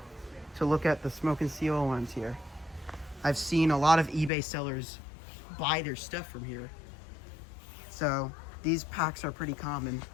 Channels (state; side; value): drops out; right; at 4.3 s